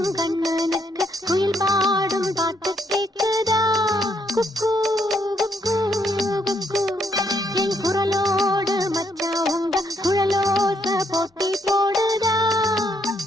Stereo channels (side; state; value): both; normal; correlation 0.74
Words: கண்ணனுக்கு குயில் பாடும் பாட்டு கேக்குதா? குக்கு குக்கு குக்கு. என் குரலோடு மச்சா உங்க குழலோச போட்டி போடுதா?